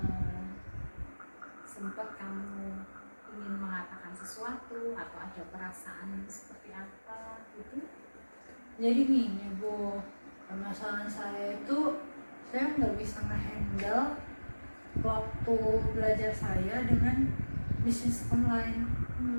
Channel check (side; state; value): both; inverted; correlation -1.00